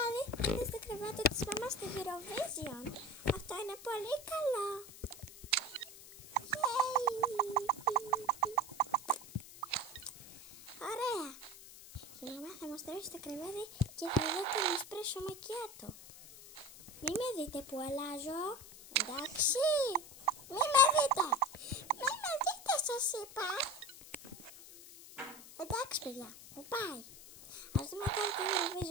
είδες το κρεβάτι της μαμάς στη Eurovision. Αυτό είναι πολύ καλό. Ωραία. Η μαμά θα μας τρώσει το κρεβάτι και θα δω τον εσπρέσο μακιάτο. Μη με δείτε που αλλάζω. Εντάξει. Μη με δείτε. Μη με δείτε σας είπα. Εντάξει παιδιά. Μου πάει. Ας δούμε τώρα το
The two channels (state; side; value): noise; left; hiss, 17 dB below the sound